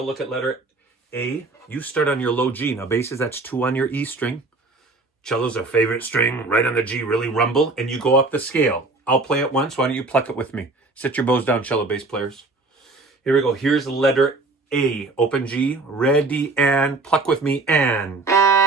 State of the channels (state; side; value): quieter; left; 3.4 dB